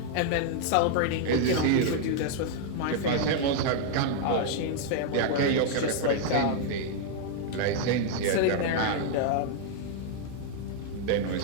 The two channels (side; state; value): both; different; correlation -0.01